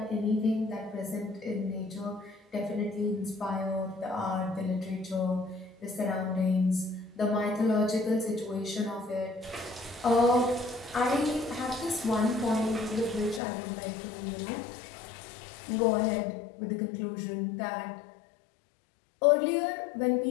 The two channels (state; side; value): drops out; right; at 13.4 s